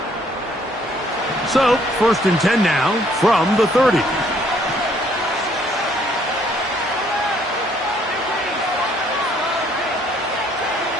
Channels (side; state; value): both; normal; correlation 0.64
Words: So, first and 10 now from the 30.